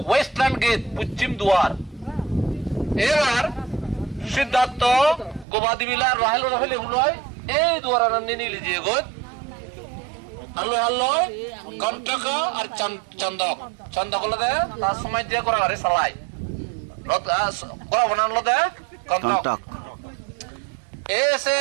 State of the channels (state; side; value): drops out; left; at 5.5 s